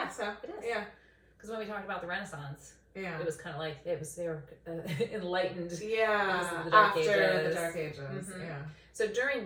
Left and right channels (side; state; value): both; identical; correlation 1.00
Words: so. It is. Yeah. Because when we talked about the Renaissance, it was kind of like they were enlightened. Yeah. Because of the Dark Ages. After the Dark Ages. Yeah. So